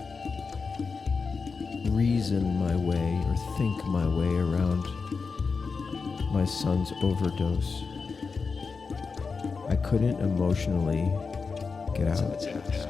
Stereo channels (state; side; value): quieter; right; 4.8 dB